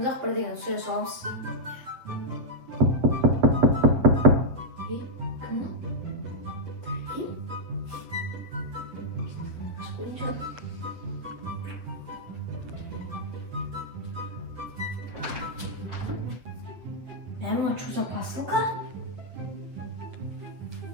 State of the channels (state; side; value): late; left; 8.1 ms